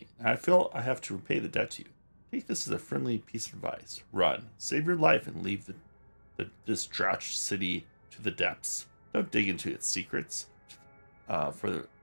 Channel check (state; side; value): inverted; both; correlation -1.00